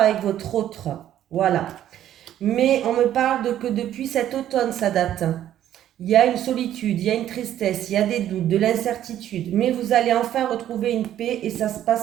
votre autre. Voilà. Mais on me parle que depuis cet automne, ça date. Il y a une solitude, il y a une tristesse, il y a des doutes, de l'incertitude. Mais vous allez enfin retrouver une paix et ça se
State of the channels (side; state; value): left; quieter; 11.6 dB